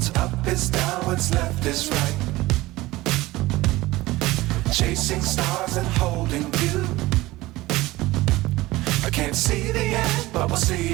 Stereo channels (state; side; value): quieter; left; 18.9 dB